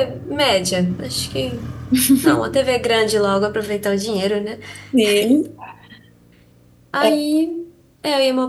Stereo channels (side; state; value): both; identical; correlation 1.00